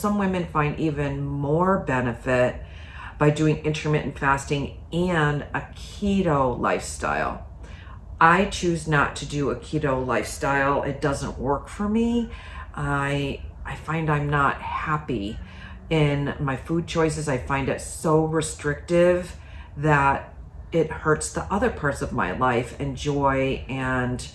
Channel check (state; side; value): identical; both; correlation 1.00